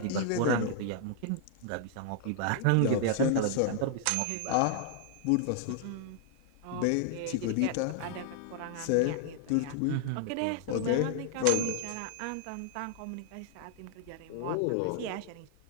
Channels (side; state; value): both; different; correlation 0.00